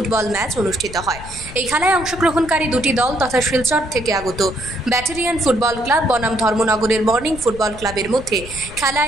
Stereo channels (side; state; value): left; noise; rumble, 14 dB below the sound